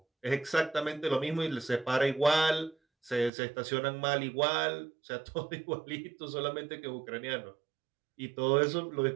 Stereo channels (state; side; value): drops out; left; at 3.3 s